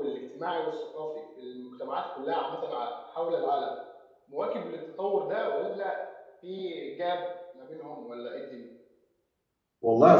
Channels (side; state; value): both; identical; correlation 1.00